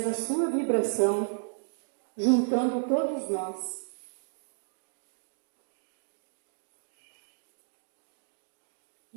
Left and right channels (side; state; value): left; silent; digital silence